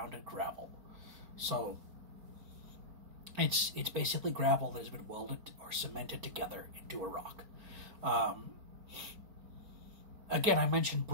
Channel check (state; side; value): late; left; 4.5 ms